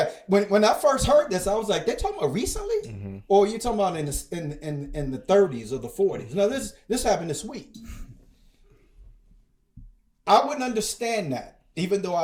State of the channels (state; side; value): identical; both; correlation 1.00